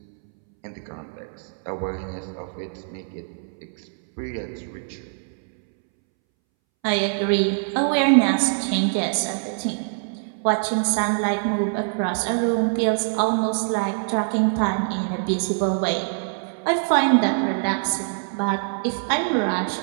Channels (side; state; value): left; silent; 63 dB below the other